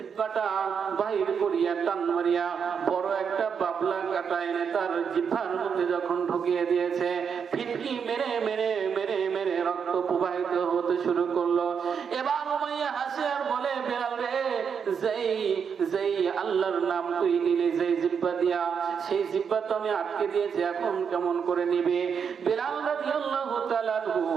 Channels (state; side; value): quieter; left; 6.8 dB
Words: বাহির করিয়া টান মারিয়া বড় একটা বাবলা কাটা এনে তার জিহ্বার মধ্যে যখন ঢুকিয়ে দিয়েছে, ফিটকি মেরে মেরে মেরে মেরে রক্ত প্রবাহিত হতে শুরু করলো। এবার উমাইয়া হাসে আর বলে, বেলাল রে, যেই আল্লাহর নাম তুই নিলি যেই জিহ্বা দিয়া, সেই জিহ্বা তো আমি আটকে দিয়েছি, এখন কেমন করে নিবে? বেলাল রাদিয়াল্লাহু তাআলা আনহু